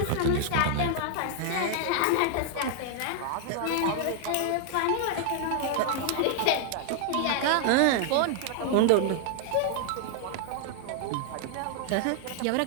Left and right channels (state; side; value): different; both; correlation 0.00